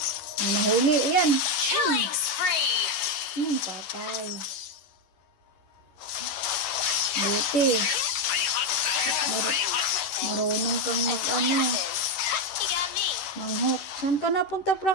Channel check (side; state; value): right; late; 11 ms